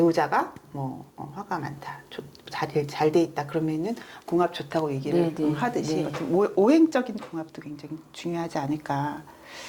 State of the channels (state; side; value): identical; both; correlation 1.00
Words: 뭐 화가 많다, 잘 돼 있다 그러면은 궁합 좋다고 얘기를 네, 네, 하듯이 네. 어떤 오행적인 궁합도 굉장히 중요하지 않을까.